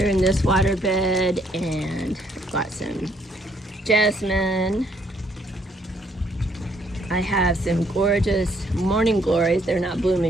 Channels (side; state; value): both; normal; correlation 0.67